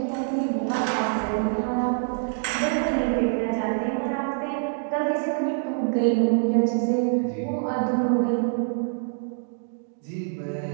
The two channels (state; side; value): silent; left; digital silence